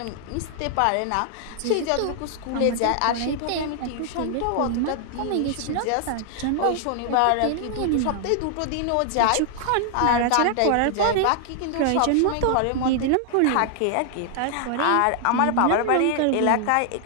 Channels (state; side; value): different; both; correlation 0.00